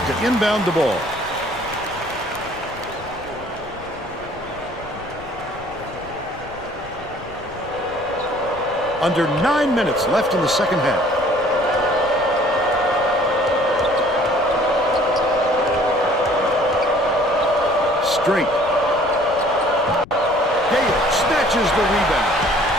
to inbound the ball. Under 9 minutes left in the second half. Straight. Gale snatches the rebound.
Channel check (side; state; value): left; noise; rumble, 18 dB below the sound